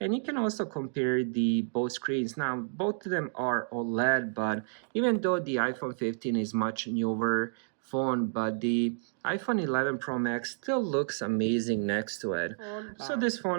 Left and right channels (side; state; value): left; silent; digital silence